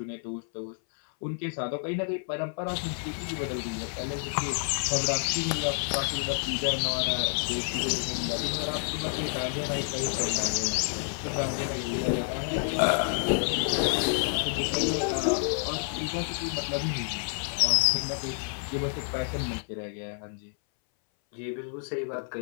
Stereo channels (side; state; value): right; silent; 58 dB below the other